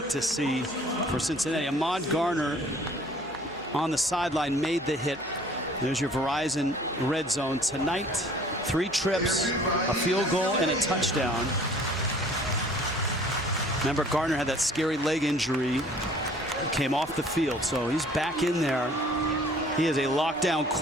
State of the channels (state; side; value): normal; both; correlation 0.53